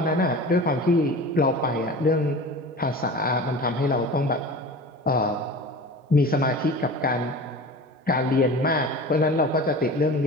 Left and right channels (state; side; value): normal; both; correlation 0.36